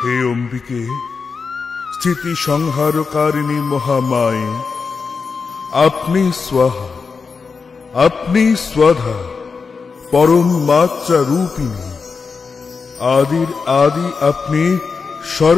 অন্যদিকে স্থিতি সংহারকারিণী মহামায়ে আপনি স্বাহা, আপনি স্বাধা, পরম মাত্রা রূপিণী, আদির আদি আপনি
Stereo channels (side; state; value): right; quieter; 5.0 dB